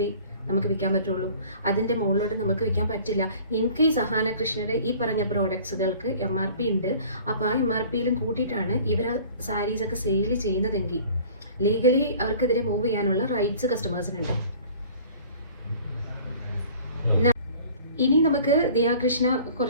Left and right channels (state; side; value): inverted; both; correlation -0.48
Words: നമുക്ക് വിൽക്കാൻ പറ്റുള്ളൂ. അതിൻ്റെ മുകളിലോട്ട് നമുക്ക് വിൽക്കാൻ പറ്റില്ല. ഇൻ കേസ് അഹാന കൃഷ്ണയുടെ ഈ പറഞ്ഞ പ്രോഡക്ട്സുകൾക്ക് MRP ഉണ്ട്, അപ്പോൾ ആ MRPയിലും കൂട്ടിയിട്ടാണ് ഇവർ സാരീസൊക്കെ സെയിൽ ചെയ്യുന്നതെങ്കിൽ ലീഗലി അവർക്കെതിരെ മൂവ് ചെയ്യാനുള്ള റൈറ്റ്സ് കസ്റ്റമേഴ്സിനുണ്ട്. ഇനി നമുക്ക് ദിയാകൃഷ്ണ